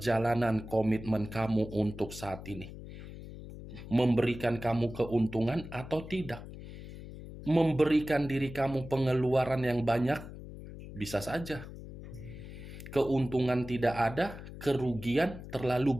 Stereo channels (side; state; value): left; noise; hum, 13 dB below the sound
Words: komitmen kamu untuk saat ini. Memberikan kamu keuntungan atau tidak. Memberikan diri kamu pengeluaran yang banyak, bisa saja. Keuntungan tidak ada, kerugian terlalu